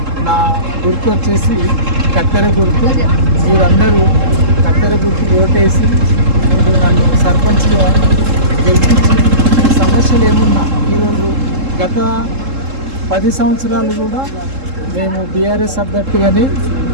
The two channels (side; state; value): left; late; 3.7 ms